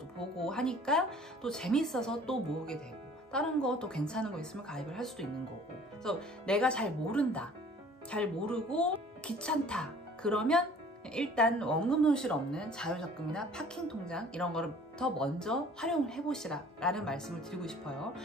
보고 하니까 또 재밌어서 또 모으게 되고, 다른 거 또 괜찮은 거 있으면 가입을 할 수도 있는 거고. 그래서 내가 잘 모른다, 잘 모르고 귀찮다 그러면 일단 원금 손실 없는 자유적금이나 파킹 통장 이런 거를 더 먼저 활용을 해보시라 라는 말씀을 드리고 싶어요.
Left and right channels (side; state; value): both; normal; correlation 0.50